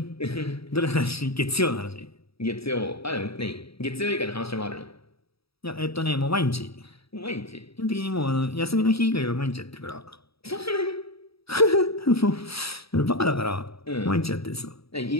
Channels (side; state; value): right; late; 0.77 ms